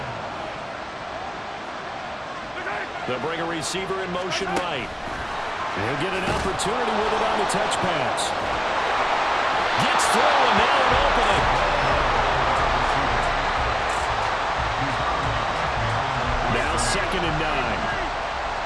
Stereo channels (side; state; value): both; identical; correlation 1.00